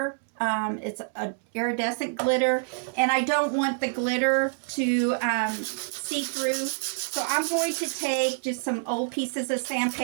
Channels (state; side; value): silent; left; digital silence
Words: It's a iridescent glitter, and I don't want the glitter to see through. So I'm going to take just some old pieces of